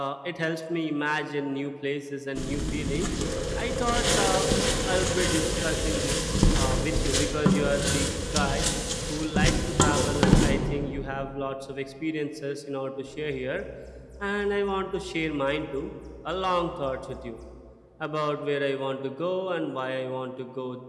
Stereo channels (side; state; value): both; identical; correlation 1.00